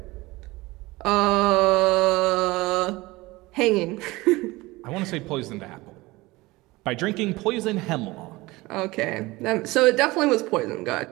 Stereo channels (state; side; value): quieter; left; 21.0 dB